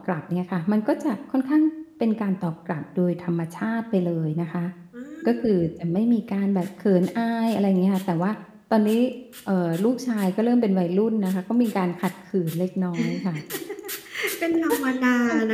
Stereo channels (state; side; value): identical; both; correlation 1.00